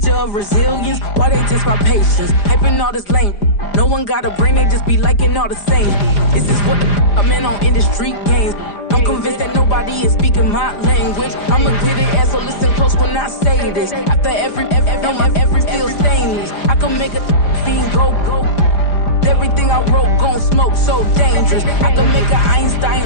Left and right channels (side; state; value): right; late; 5.0 ms